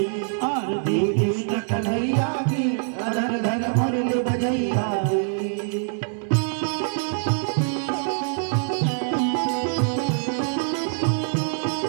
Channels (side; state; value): left; silent; digital silence